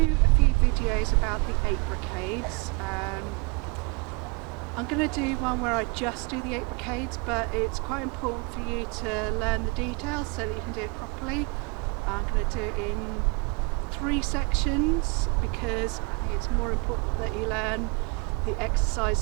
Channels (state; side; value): quieter; left; 30.9 dB